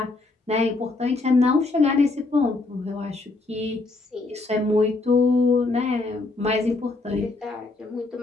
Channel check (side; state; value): right; quieter; 3.4 dB